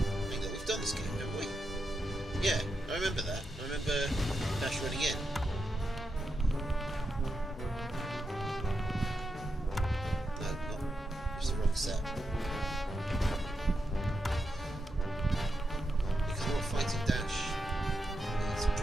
think that we've done this game, haven't we? Yeah, I remember that. I remember Dash running in. No, not. It's the wrong set. Because we're not fighting Dash. It's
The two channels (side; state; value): both; normal; correlation 0.86